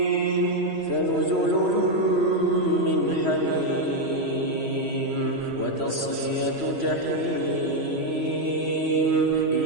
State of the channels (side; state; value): left; late; 3.1 ms